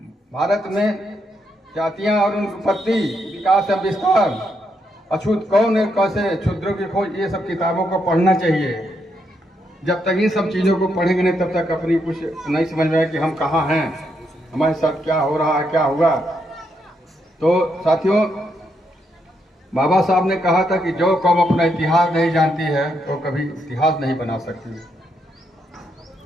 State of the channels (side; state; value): both; normal; correlation 0.79